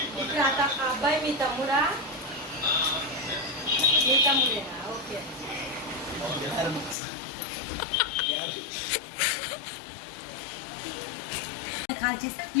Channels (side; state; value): right; drops out; at 7.0 s